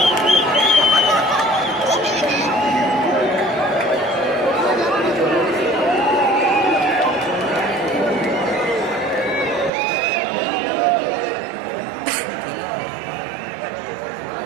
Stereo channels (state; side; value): drops out; left; at 9.7 s